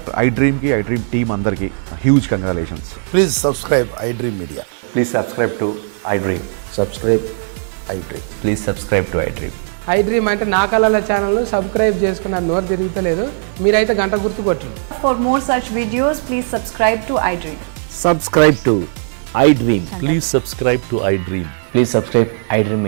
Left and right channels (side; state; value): left; silent; 68 dB below the other